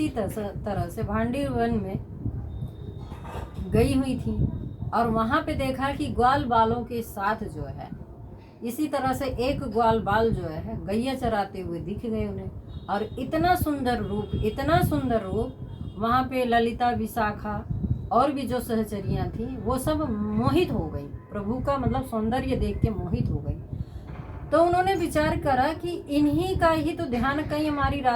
तरह से भांडी वन में गई हुई थी और वहाँ पे देखा कि ग्वाल बालों के साथ जो है इसी तरह से एक ग्वाल बाल जो है गैया चराते हुए दिख गए उन्हें। और इतना सुंदर रूप वहाँ पे ललिता विशाखा और भी जो सहचरियाँ थी वो सब मोहित हो गई, प्रभु का मतलब सौंदर्य देख के मोहित हो गई। तो उन्होंने विचार करा कि इन्हीं का ही तो ध्यान कहीं हमारी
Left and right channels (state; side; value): identical; both; correlation 1.00